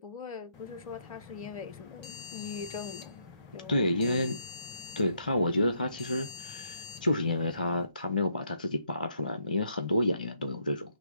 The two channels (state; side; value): inverted; both; correlation -0.72